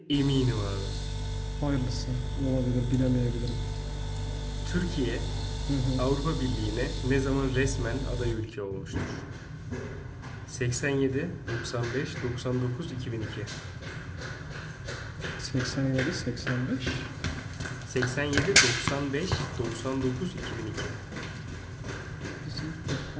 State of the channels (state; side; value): identical; both; correlation 1.00